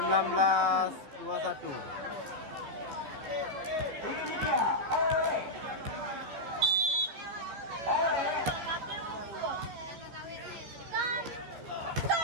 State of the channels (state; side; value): late; left; 14 ms